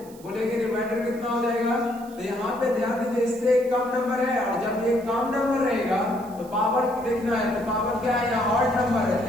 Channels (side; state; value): right; noise; hiss, 23 dB below the sound